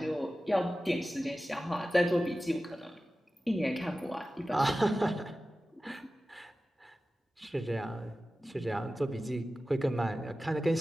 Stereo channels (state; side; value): normal; both; correlation 0.95